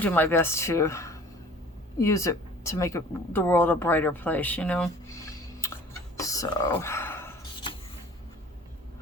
my best to use it to make the world a brighter place, you know? So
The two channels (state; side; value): normal; both; correlation 0.47